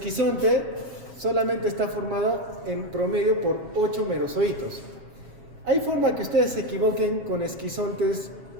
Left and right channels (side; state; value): left; late; 7.3 ms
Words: solamente está formado en promedio por 8 merozoitos. ¿Hay forma que ustedes se equivoquen con esquizontes